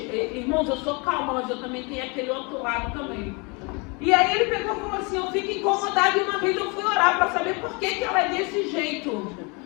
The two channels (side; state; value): right; quieter; 30.4 dB